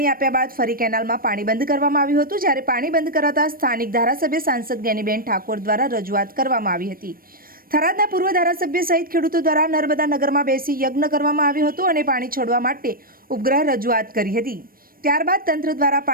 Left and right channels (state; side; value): late; left; 0.42 ms